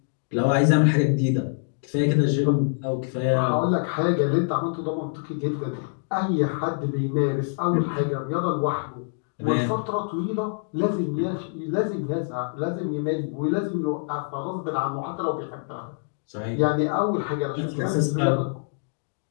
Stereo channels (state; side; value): silent; right; digital silence